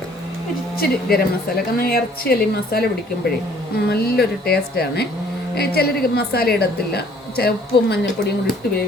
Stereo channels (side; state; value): both; normal; correlation 0.58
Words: ഇച്ചിരി ഗരം മസാല. കാരണം ഇറച്ചിയല്ല ഈ മസാല പിടിക്കുമ്പോഴേ നല്ലൊരു ടേസ്റ്റാണ്. ചിലർ മസാല ഇടത്തില്ല, ഉപ്പും മഞ്ഞൾപ്പൊടിയും കൂടി ഇട്ട്